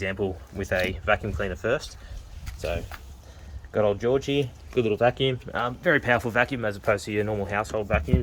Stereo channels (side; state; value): both; identical; correlation 1.00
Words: with a vacuum cleaner first. So got old Georgie, good little vacuum, very powerful vacuum as opposed to your normal household